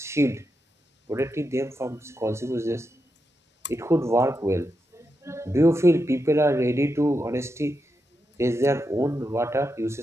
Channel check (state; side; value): normal; both; correlation 0.86